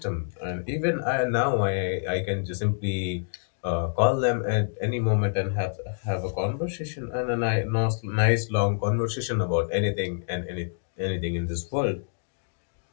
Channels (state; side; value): silent; right; digital silence